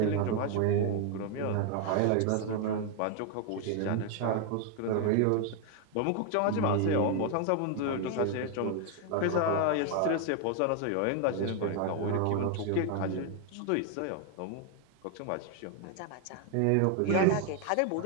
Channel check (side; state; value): both; different; correlation 0.01